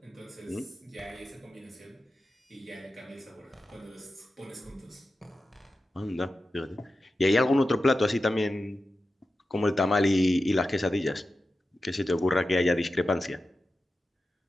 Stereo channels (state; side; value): normal; both; correlation 0.92